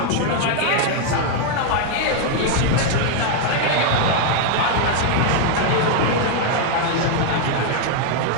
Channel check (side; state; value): both; different; correlation 0.00